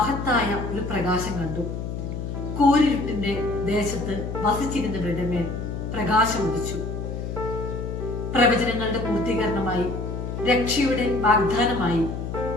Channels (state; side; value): noise; left; hum, 5 dB below the sound